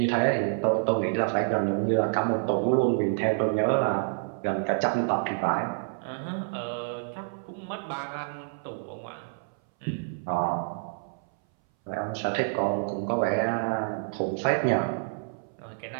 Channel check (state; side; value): silent; left; 59 dB below the other